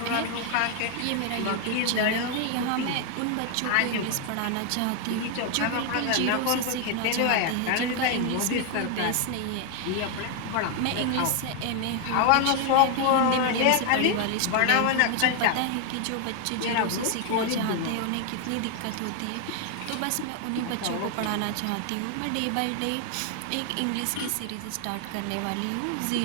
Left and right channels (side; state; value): both; different; correlation 0.01